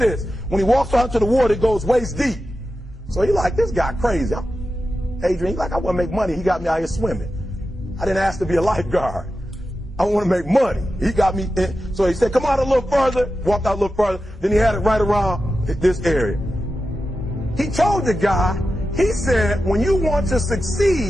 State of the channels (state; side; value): normal; both; correlation 0.91